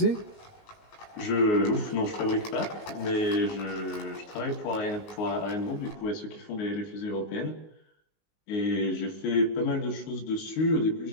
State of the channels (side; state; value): right; late; 19 ms